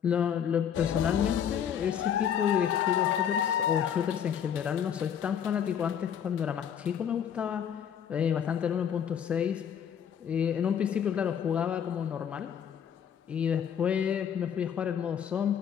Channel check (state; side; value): quieter; right; 8.5 dB